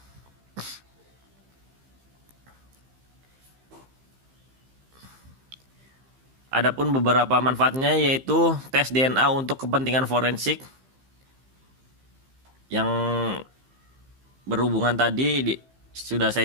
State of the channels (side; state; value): left; late; 15 ms